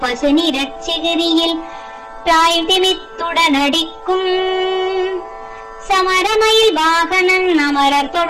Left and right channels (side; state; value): both; identical; correlation 1.00